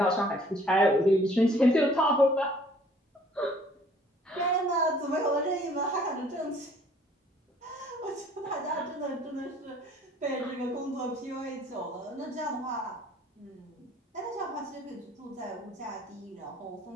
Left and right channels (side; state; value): both; normal; correlation 0.57